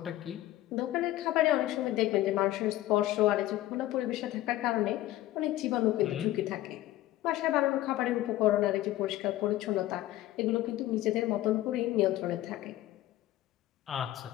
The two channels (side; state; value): right; quieter; 15.3 dB